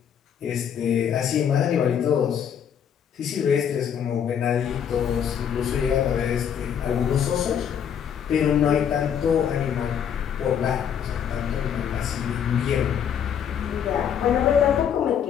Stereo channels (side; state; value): right; quieter; 8.4 dB